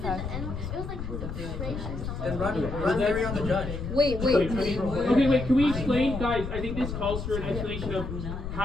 the N-word. It was like racist. Then run theory on the judge. Wait. Okay, wait, can we explain, guys? I think this calls for an explanation of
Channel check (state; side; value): noise; left; rumble, 6 dB below the sound